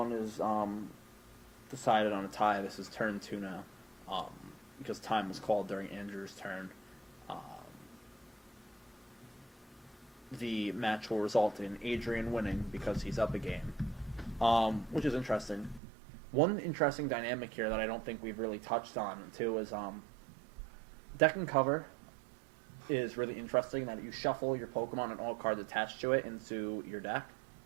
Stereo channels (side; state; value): left; drops out; at 15.8 s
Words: is decided on a tie, this is turn 2 now, because time was called during Andrew's turn. The match will result in Adrian winning because he's up a game, which is interesting. One interesting dynamic here that I don't think we've really touched on, too, is deck and cover is really interesting, that you shuffle your Pokemon and all cards attached to it into your deck.